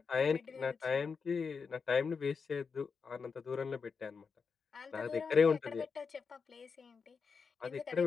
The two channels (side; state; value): right; quieter; 5.4 dB